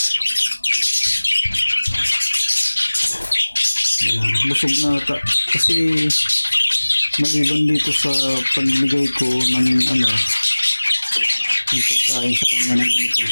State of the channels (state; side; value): inverted; both; correlation -1.00